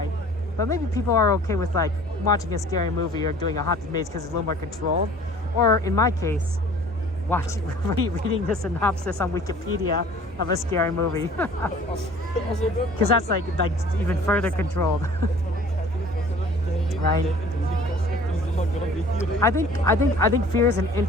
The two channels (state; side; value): normal; both; correlation 0.49